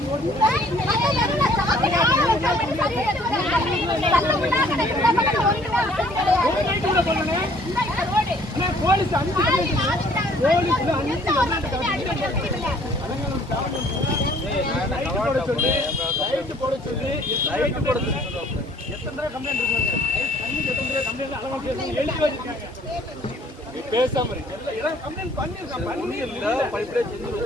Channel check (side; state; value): both; normal; correlation 0.58